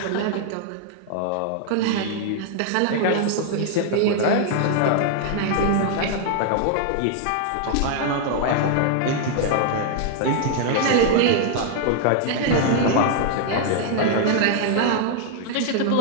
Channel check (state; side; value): different; both; correlation 0.00